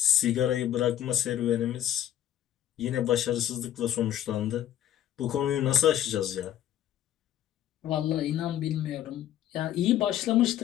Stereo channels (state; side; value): quieter; right; 11.5 dB